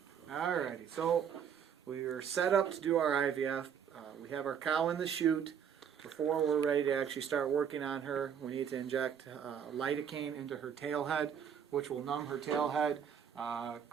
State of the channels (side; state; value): left; quieter; 8.0 dB